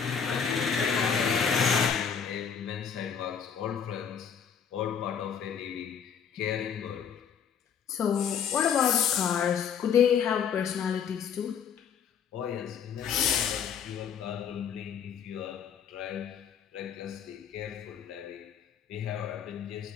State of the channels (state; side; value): quieter; right; 7.4 dB